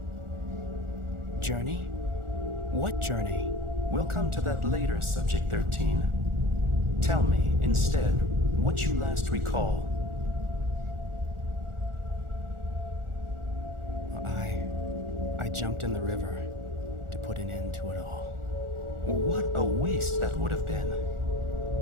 Journey? What journey? We'll come to that later, Subject 13. Tell me, instead, what you last recall. I jumped in the river to put an end to it all. What a waste that would have been.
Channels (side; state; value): left; late; 1.4 ms